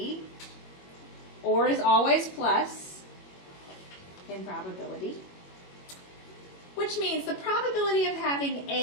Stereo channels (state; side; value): late; right; 21 ms